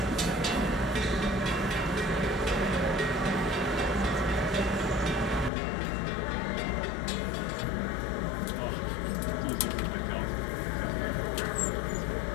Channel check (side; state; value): right; drops out; at 5.5 s